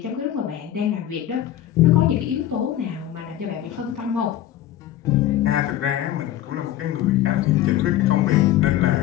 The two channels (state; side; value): quieter; right; 12.5 dB